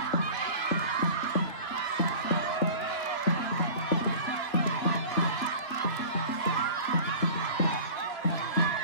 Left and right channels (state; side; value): late; right; 3.5 ms